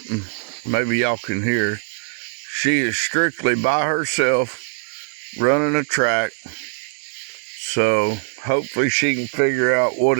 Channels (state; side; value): silent; left; digital silence